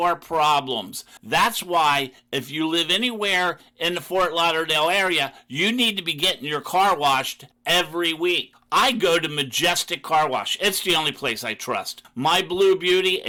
problems. That's why if you live anywhere in the Fort Lauderdale area, you need to be getting your car washed every week. I go to Majestic Car Wash. It's the only place I trust. My Blue Beauty,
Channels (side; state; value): both; identical; correlation 1.00